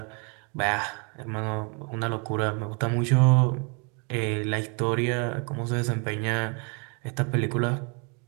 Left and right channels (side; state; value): left; quieter; 34.8 dB